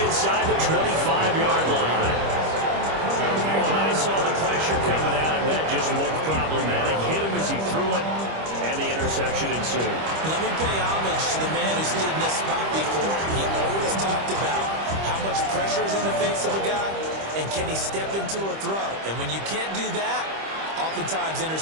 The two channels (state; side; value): late; left; 25 ms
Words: inside the 25-yard line. When I saw the pressure coming at him, that just looked problematic. Hit him as he threw it, and the interception ensued. Let me pay homage to the man who stood in this spot before. He always talked about how much pressure is in the face of a guy, and can he step into a throw. And when you can't do that, oftentimes